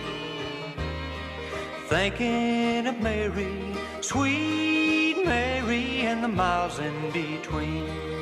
thinking of Mary, sweet Mary, and the miles in between.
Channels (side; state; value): both; identical; correlation 1.00